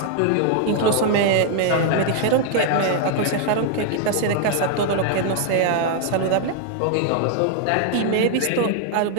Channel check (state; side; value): different; both; correlation 0.00